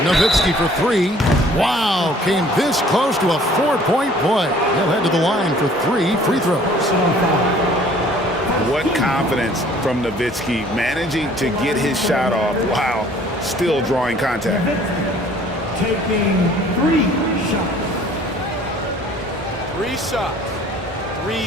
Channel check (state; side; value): normal; both; correlation 0.54